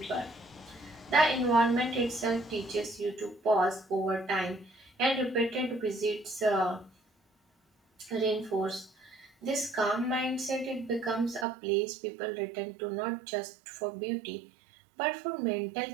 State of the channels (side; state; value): left; drops out; at 11.5 s